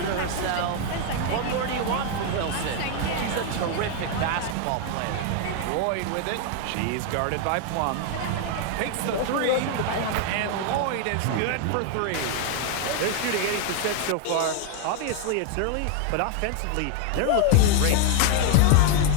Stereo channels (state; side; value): different; both; correlation 0.00